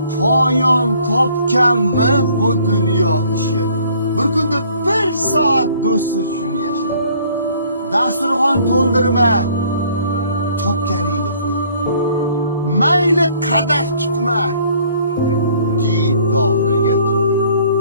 poyon topganmi bu dunyo ishi? Bir kunda bir soat do'st uchun yasha. Dasturxon to'ldirma, topganingni qo'y. Mayli qadah tutma, didoriga to'y.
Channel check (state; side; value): inverted; both; correlation -0.58